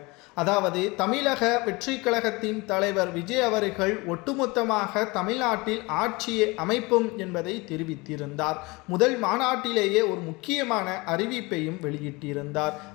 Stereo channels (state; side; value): quieter; right; 24.7 dB